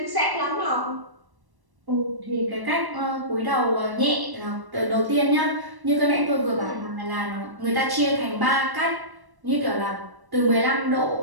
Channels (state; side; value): late; left; 1.1 ms